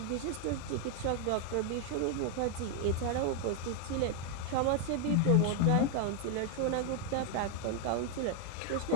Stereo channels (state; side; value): different; both; correlation 0.01